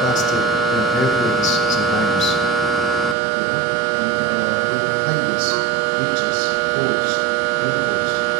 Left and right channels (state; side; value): drops out; left; at 3.2 s